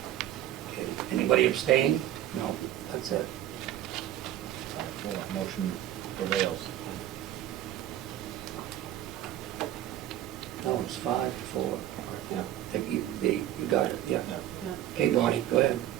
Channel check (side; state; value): left; quieter; 12.7 dB